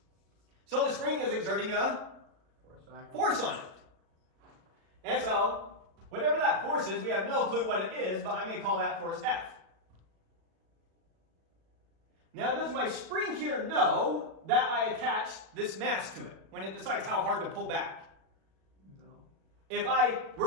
So the spring is exerting a Backwards. force on it. And so, whatever that force is, we have no clue what it is, but I'm going to call that force F. Now, does my spring here know that I attached this mass to it when it decides how hard to pull back? No. If I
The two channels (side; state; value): left; late; 37 ms